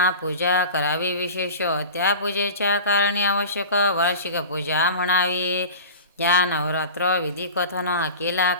करावी विशेष, त्या पूजेच्या कारणे आवश्यक वार्षिक पूजा म्हणावी, या नवरात्र विधी कथन केला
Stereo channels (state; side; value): inverted; both; correlation -0.35